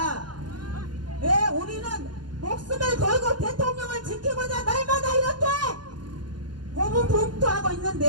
예, 우리는 목숨을 걸고 대통령을 지키고자 날마다 이렇게 고군분투하고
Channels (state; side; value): late; left; 0.71 ms